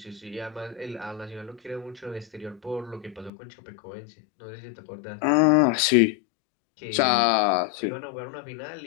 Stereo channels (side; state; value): right; drops out; at 3.3 s